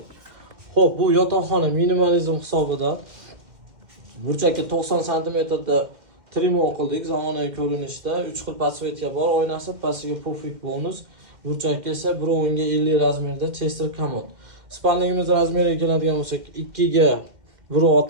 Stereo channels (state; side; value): late; left; 2.1 ms